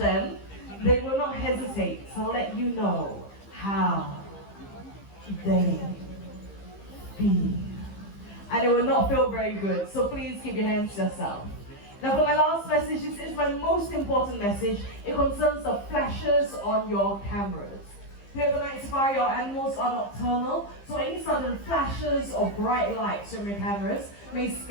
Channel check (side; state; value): right; late; 15 ms